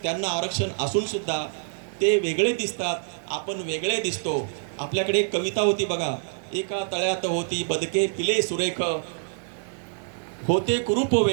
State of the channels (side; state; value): left; silent; digital silence